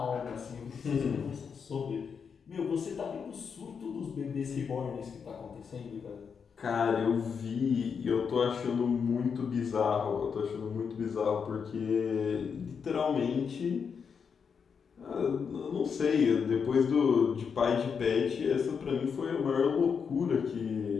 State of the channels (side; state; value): right; quieter; 6.3 dB